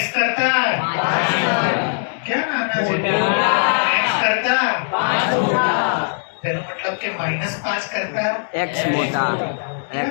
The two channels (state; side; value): silent; right; digital silence